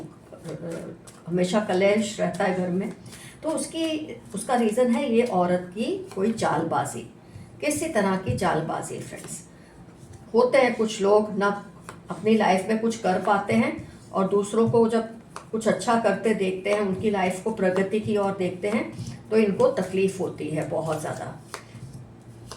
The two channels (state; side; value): identical; both; correlation 1.00